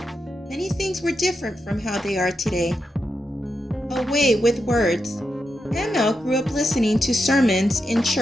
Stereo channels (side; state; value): both; normal; correlation 0.86